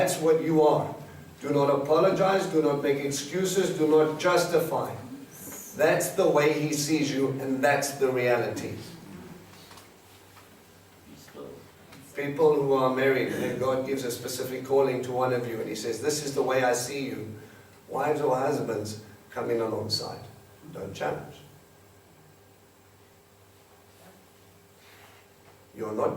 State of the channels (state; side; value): identical; both; correlation 1.00